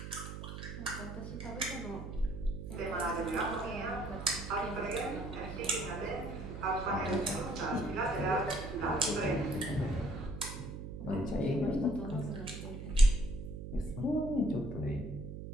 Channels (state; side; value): noise; right; hum, 8 dB below the sound